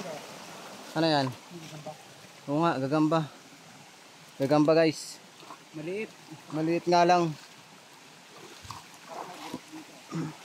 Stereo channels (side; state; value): both; identical; correlation 1.00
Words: Ano yan? Oo nga, gagamba. Gagamba guys. Maliit. Maliit nga lang.